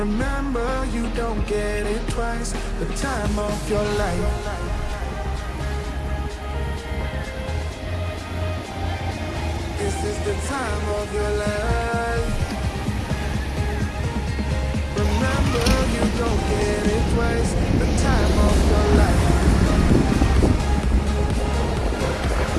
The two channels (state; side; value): identical; both; correlation 1.00